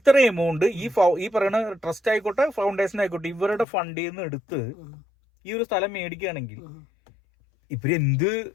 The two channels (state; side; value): drops out; right; at 3.7 s